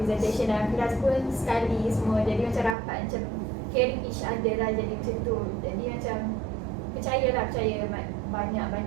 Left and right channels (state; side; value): drops out; left; at 2.8 s